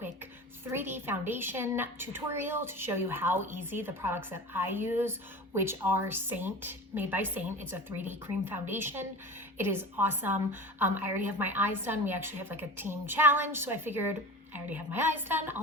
3D foundation tutorial to show you how easy the products that I use, which are made by Saint. It's a 3D cream foundation. It is awesome. I already have my eyes done. We actually have like a team challenge, so I figured I already have my eyes done.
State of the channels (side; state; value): both; normal; correlation 0.33